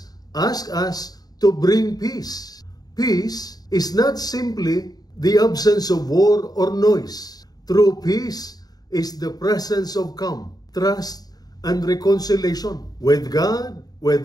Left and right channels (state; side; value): late; right; 0.19 ms